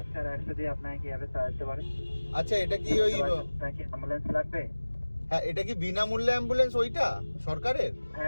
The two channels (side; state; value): both; inverted; correlation -1.00